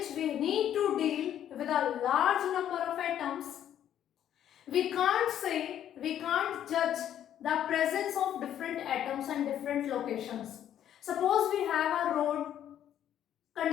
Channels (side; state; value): right; quieter; 10.6 dB